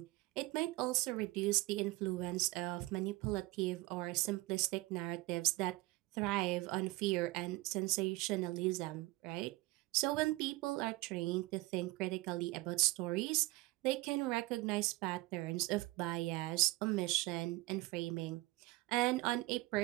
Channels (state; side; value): quieter; left; 21.4 dB